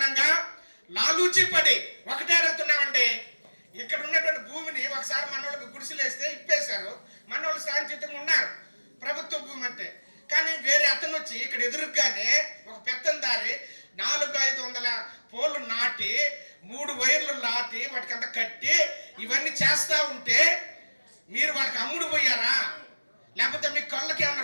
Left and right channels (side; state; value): both; inverted; correlation -1.00